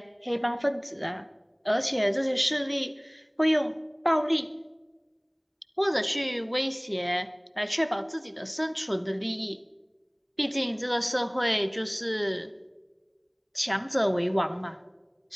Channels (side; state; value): both; identical; correlation 1.00